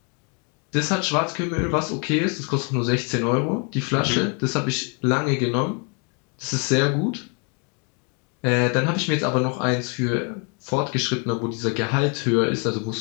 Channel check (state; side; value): quieter; right; 36.8 dB